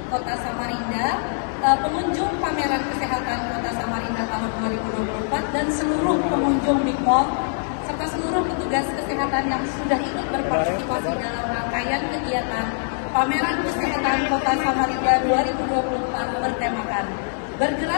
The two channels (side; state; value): right; silent; 63 dB below the other